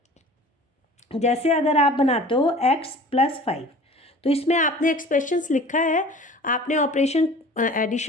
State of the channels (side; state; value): both; normal; correlation 0.44